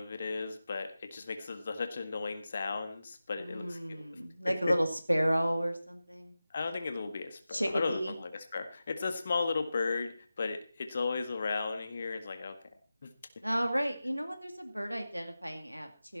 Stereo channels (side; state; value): both; inverted; correlation -0.94